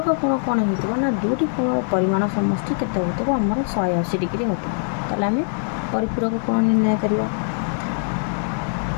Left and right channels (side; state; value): right; silent; 61 dB below the other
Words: कोण कौन हो ना दुटी कोण परिमाण समष्टि केते होतबो आमर 180 डिग्री होतबो। ताले आम परिपूरक कोण निर्णय करवा।